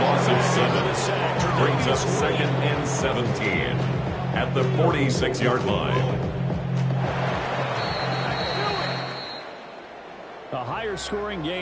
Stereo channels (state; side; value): identical; both; correlation 1.00